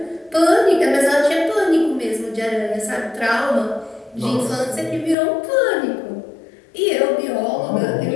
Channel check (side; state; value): right; drops out; at 5.2 s